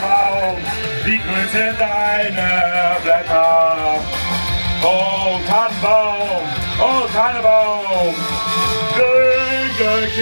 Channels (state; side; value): inverted; both; correlation -1.00